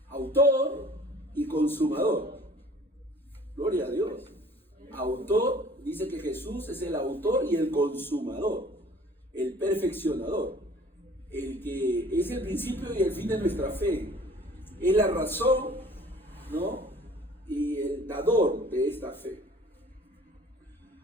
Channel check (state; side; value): normal; both; correlation 0.51